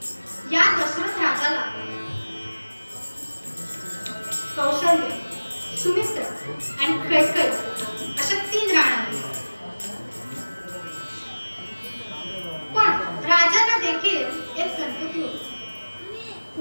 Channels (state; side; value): inverted; both; correlation -1.00